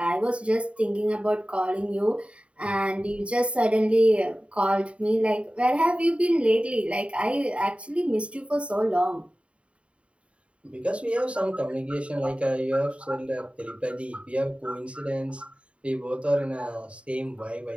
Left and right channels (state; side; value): late; left; 0.061 ms